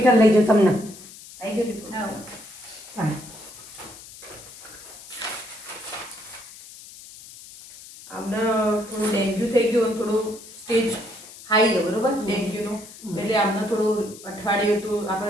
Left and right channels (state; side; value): noise; left; hiss, 17 dB below the sound